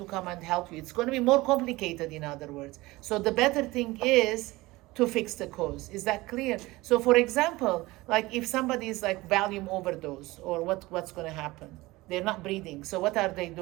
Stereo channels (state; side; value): quieter; left; 20.3 dB